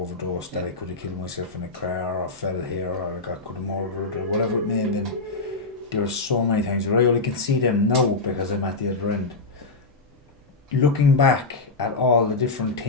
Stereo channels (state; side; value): quieter; right; 3.6 dB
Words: that I could have killed myself in a car, or fell here, or I could have murdered, or whatever it may have been. There were so many times where I only can see them now because I'm at the other end. Looking back at all the different